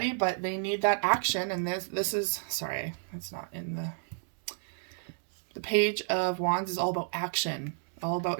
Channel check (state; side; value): silent; left; digital silence